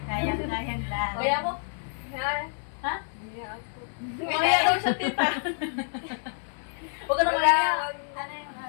Kayang lang. Kaya mo? Ha? Kaya daw siya tita. Huwag ka na kaya. Ano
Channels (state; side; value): silent; right; 59 dB below the other